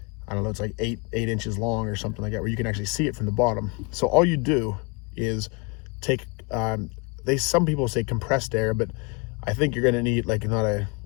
I don't know, it's like eight inches long or something like that, where you can actually see it from the bottom. So all you do is take, some people say compressed air, but I think you're gonna need like not a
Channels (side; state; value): right; quieter; 29.8 dB